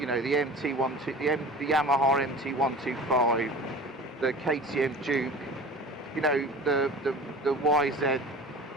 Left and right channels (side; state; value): both; normal; correlation 0.38